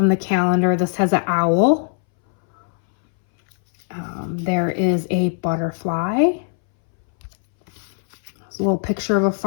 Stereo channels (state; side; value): silent; right; 64 dB below the other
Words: the calendar. This has an owl. There is a butterfly. There's a little picture of a